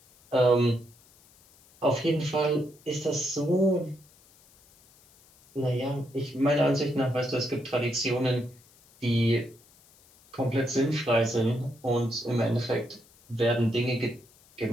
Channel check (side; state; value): left; noise; hiss, 28 dB below the sound